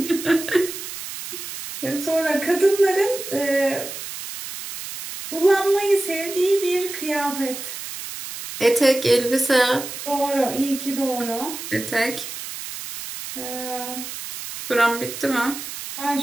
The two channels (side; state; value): right; noise; hiss, 9 dB below the sound